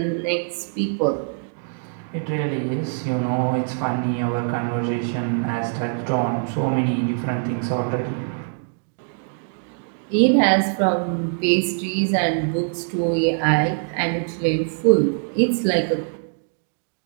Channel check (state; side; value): silent; left; digital silence